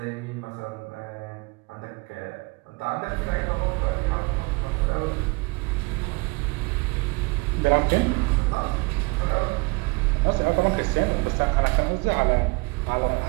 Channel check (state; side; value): quieter; left; 27.3 dB